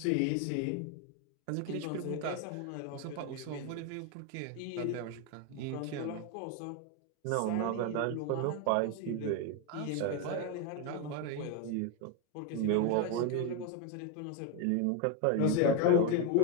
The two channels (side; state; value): both; different; correlation 0.01